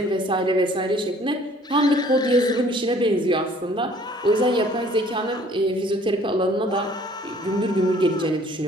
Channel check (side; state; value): both; normal; correlation 0.56